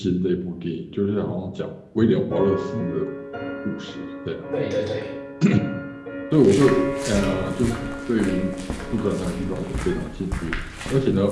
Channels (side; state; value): both; identical; correlation 1.00